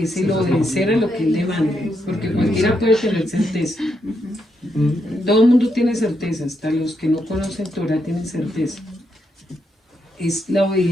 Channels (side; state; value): both; normal; correlation 0.80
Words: el obedecer a lo que Él demanda, porque cualquiera puede tener certeza. Todo el mundo tiene certeza, hasta los que no conocen Torah tienen certeza. Es la